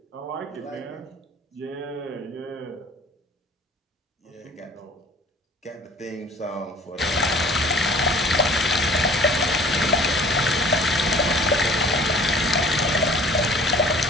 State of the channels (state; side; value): normal; both; correlation 0.50